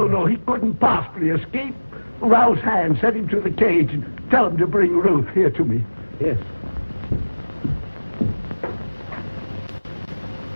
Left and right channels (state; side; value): inverted; both; correlation -1.00